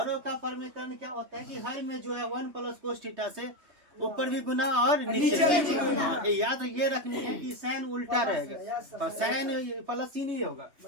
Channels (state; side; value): late; left; 3.2 ms